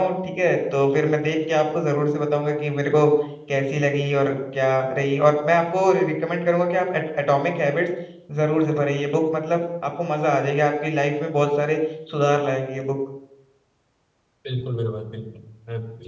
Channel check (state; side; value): identical; both; correlation 1.00